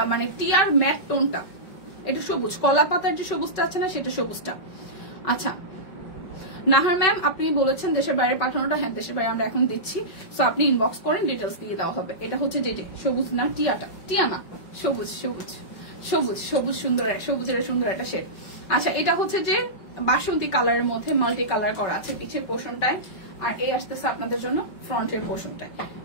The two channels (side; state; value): right; late; 5.4 ms